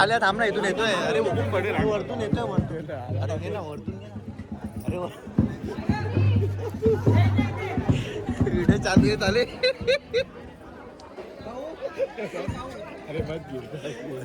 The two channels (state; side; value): identical; both; correlation 1.00